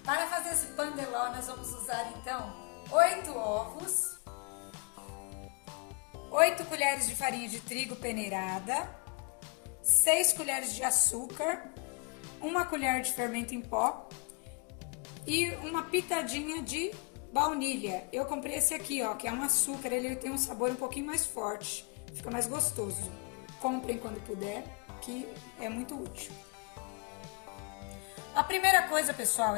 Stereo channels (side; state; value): right; quieter; 32.2 dB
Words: Para fazer esse pandeló, nós vamos usar então 8 ovos, 8 colheres de farinha de trigo peneirada, 6 colheres de açúcar, 1 colher de fermento em pó e uma pitadinha de baunilha. Eu comprei esse aqui, ó, que é um açúcar, ele tem um sabor um pouquinho mais forte, fica mais gostoso. Comprem quando puder, que é muito útil. A primeira coisa, pessoal,